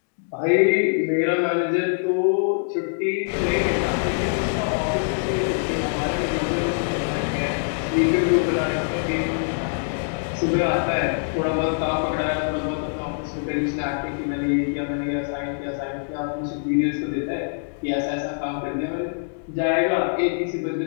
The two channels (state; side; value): silent; right; digital silence